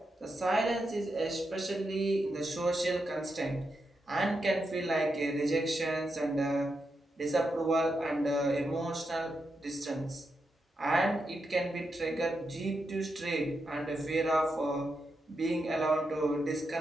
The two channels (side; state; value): both; normal; correlation 0.85